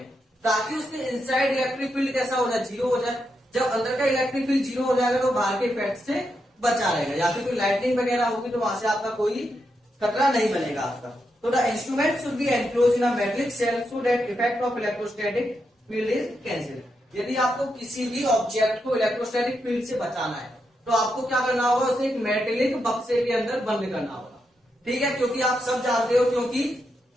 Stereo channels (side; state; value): both; normal; correlation 0.84